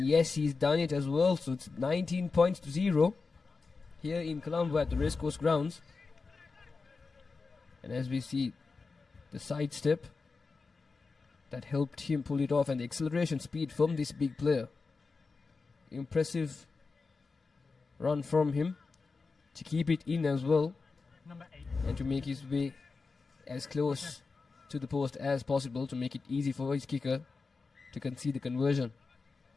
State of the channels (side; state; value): right; quieter; 4.4 dB